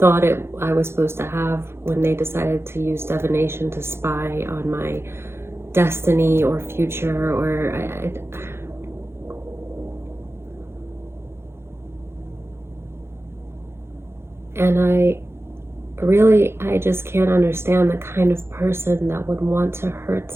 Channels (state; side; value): late; left; 0.12 ms